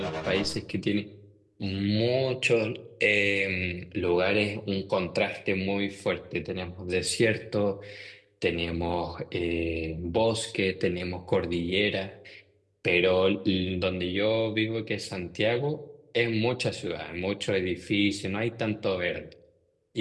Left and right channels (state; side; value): identical; both; correlation 1.00